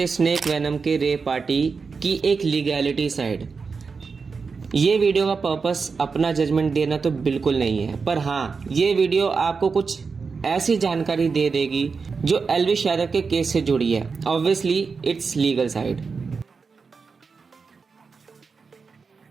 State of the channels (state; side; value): quieter; left; 5.0 dB